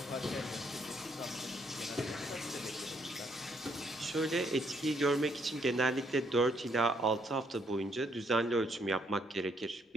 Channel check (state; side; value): normal; both; correlation 0.71